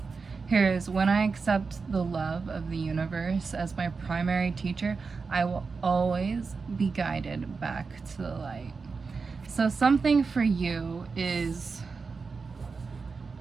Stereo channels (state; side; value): quieter; left; 4.7 dB